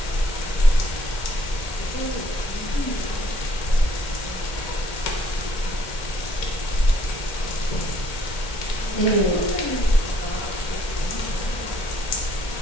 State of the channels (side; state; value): right; late; 1.8 ms